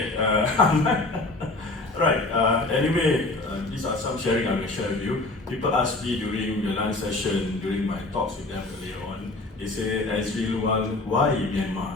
Right. Anyway, these are some sharing I will share with you. People ask me during the lunch session, during my talks with them earlier on, they say, Azri Lual, why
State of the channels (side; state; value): right; quieter; 3.0 dB